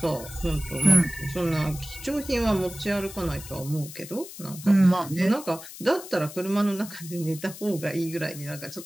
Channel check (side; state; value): left; noise; hiss, 14 dB below the sound